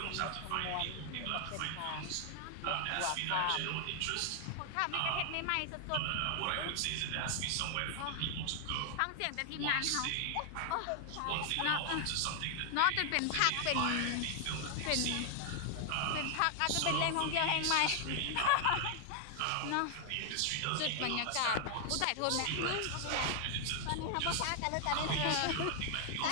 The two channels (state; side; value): different; both; correlation 0.00